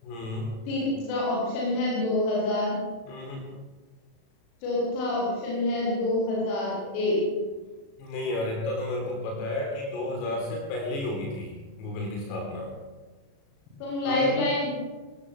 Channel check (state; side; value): late; right; 36 ms